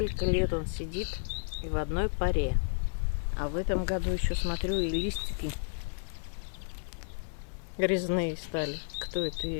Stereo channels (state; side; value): silent; right; 57 dB below the other